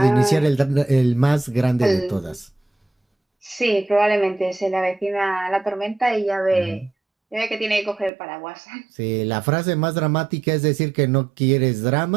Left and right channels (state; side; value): drops out; left; at 8.1 s